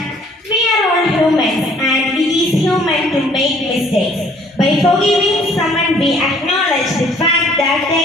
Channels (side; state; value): both; normal; correlation 0.59